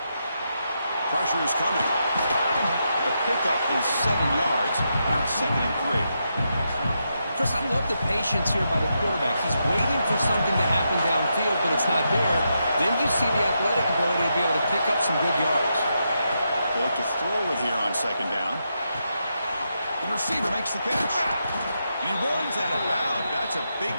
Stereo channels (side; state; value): both; inverted; correlation -0.83